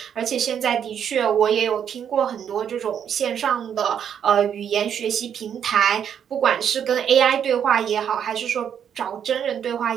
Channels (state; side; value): quieter; left; 8.5 dB